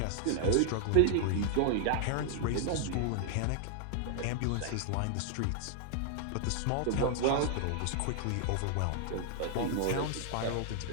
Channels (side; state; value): both; different; correlation 0.00